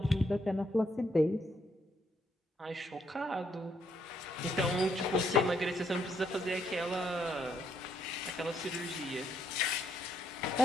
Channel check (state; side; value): normal; both; correlation 0.74